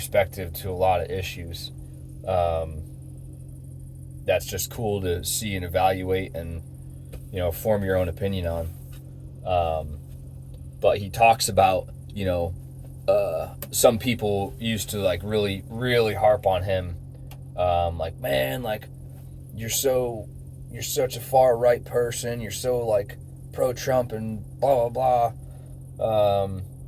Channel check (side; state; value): both; identical; correlation 1.00